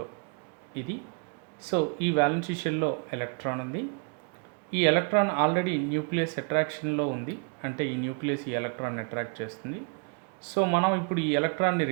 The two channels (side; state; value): left; quieter; 36.5 dB